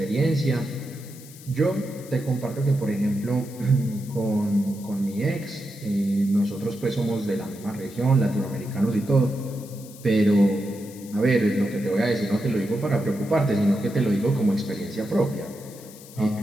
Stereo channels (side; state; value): left; noise; hiss, 19 dB below the sound